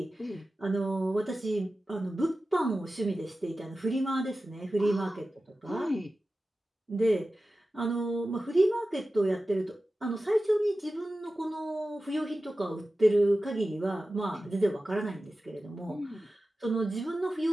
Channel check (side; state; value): both; normal; correlation 0.94